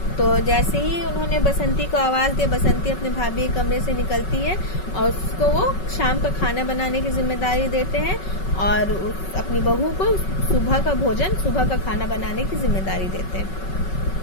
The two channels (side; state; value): right; late; 5.3 ms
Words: तो जैसे ही उन्होंने बसंती को आवाज़ दी, बसंती अपने भाभी के कमरे से निकलती है और उसको वो शाम का खाना बनाने की जिम्मेदारी देते हैं और अपनी बहू को सुबह का खाना बनाने की जिम्मेदारी देते हैं।